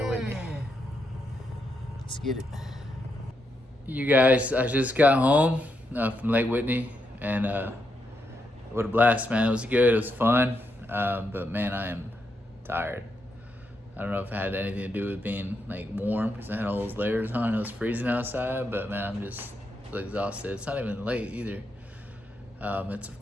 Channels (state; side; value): normal; both; correlation 0.82